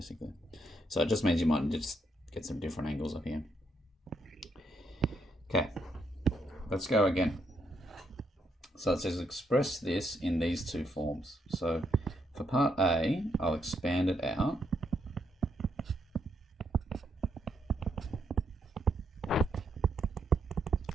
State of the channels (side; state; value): both; normal; correlation 0.76